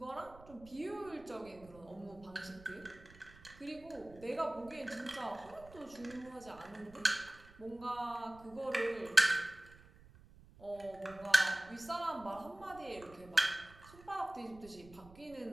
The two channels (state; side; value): noise; right; rumble, 21 dB below the sound